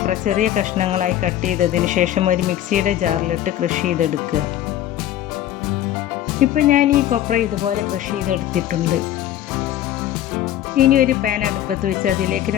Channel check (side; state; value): right; quieter; 12.3 dB